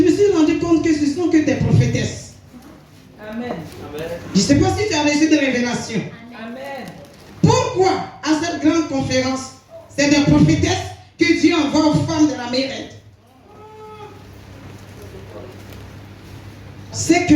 me suis rendu compte que ce sont que des prophétesses. Amen. Je ne sais pas si tu as reçu des révélations. Amen. Pourquoi à cette grande conférence, c'est des prophétesses que Dieu envoie aux femmes de la Mérette? C'est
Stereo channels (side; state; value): both; identical; correlation 1.00